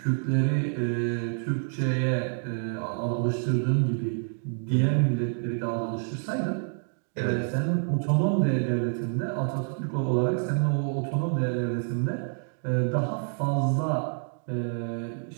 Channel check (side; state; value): left; silent; 60 dB below the other